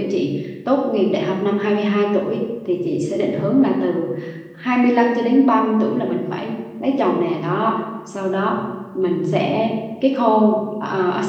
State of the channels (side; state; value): both; identical; correlation 1.00